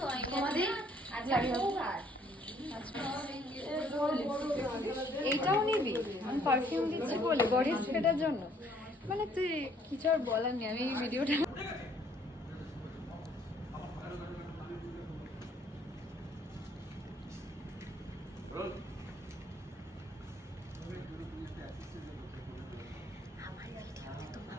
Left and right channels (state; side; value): normal; both; correlation 0.62